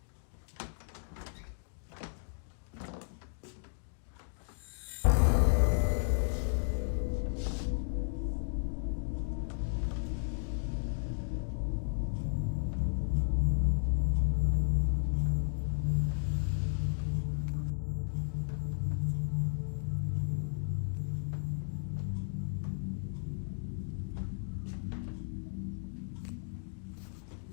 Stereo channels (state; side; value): silent; right; digital silence